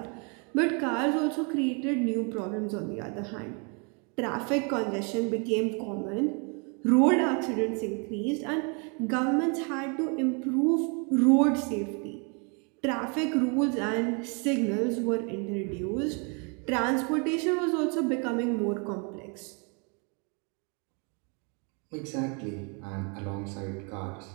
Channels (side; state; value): left; quieter; 35.6 dB